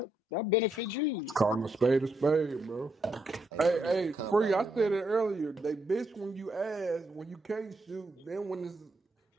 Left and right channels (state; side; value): normal; both; correlation 0.78